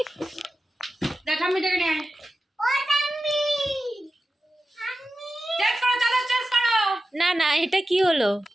দেখ আমি ডেকে নিয়ে না না, এটা কি হলো?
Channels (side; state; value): both; normal; correlation 0.93